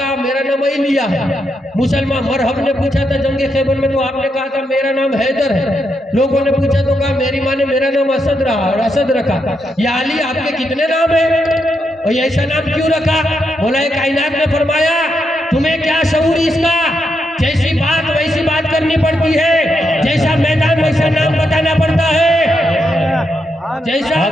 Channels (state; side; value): normal; both; correlation 0.82